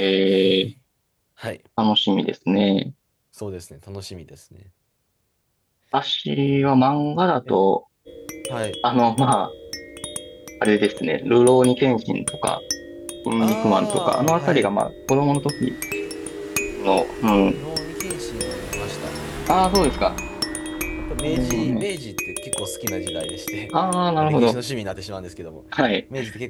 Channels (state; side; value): identical; both; correlation 1.00